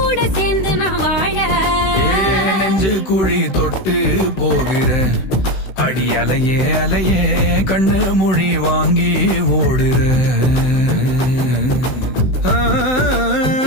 சேர்ந்து நான் வாழ. நெஞ்சு குழி தொட்டு போகிற அடி அலையே அலையே கண்ணு மொழி வாங்கி ஓடுற. ஆ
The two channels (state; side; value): late; right; 16 ms